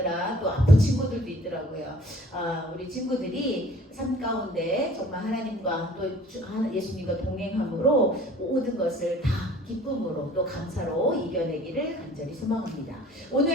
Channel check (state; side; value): normal; both; correlation 0.51